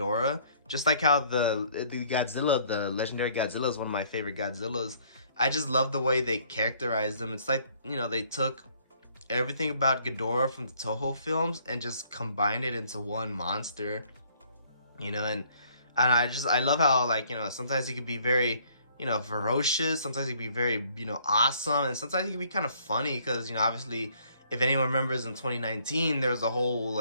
Just like how the Godzilla, the legendary Godzilla, is one of my favorite Godzillas. I just love the way they characterized them. It's like, they took everything about Ghidorah from the Toho films and just combined it into one monster. And I love how, like, sometimes he could be very, ferocious. Sometimes he could be very, awesome. And sometimes he could be kind of funny because, obviously, if anyone remembers in 2019, there was a whole,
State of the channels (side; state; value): both; inverted; correlation -0.62